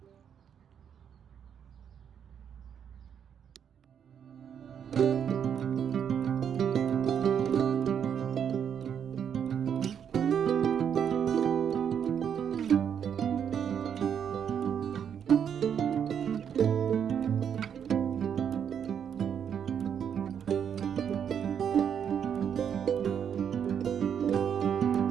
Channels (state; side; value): quieter; left; 8.2 dB